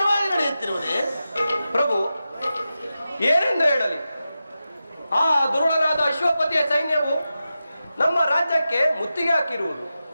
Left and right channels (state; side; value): inverted; both; correlation -0.91